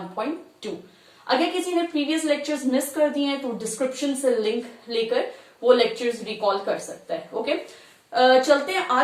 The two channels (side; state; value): both; identical; correlation 1.00